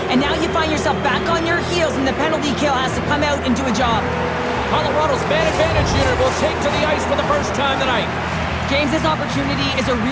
and now you find yourself back on your heels, and the penalty kill has to come out and do a job. Colorado's man advantage unit will take to the ice for the first time tonight. James, this opportunity is a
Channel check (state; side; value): identical; both; correlation 1.00